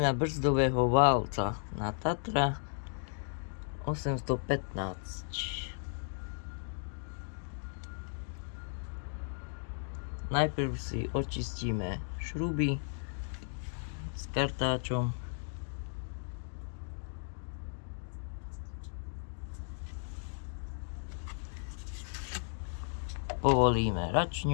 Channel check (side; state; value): right; silent; digital silence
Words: brzdového válca na Tatra 815. Najprv si očistíme šruby s kartáčom. Povolíme